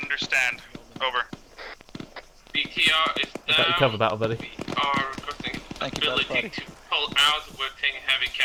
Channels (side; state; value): both; identical; correlation 1.00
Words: understand. Over. BTR is Got your down. cover, battle buddy. We are requesting ability to pull out. We're taking heavy